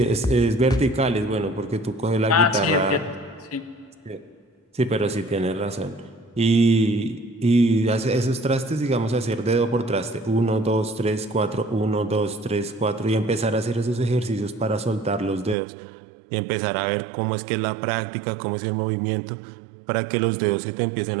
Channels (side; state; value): left; drops out; at 15.6 s